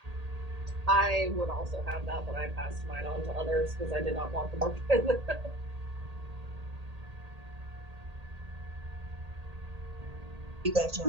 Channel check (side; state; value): left; late; 1.8 ms